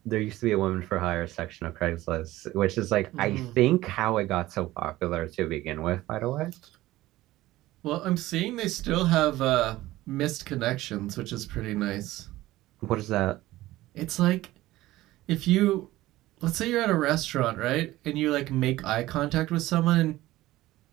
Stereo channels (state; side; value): quieter; left; 16.8 dB